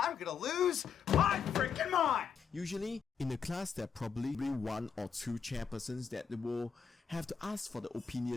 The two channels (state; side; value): quieter; right; 6.6 dB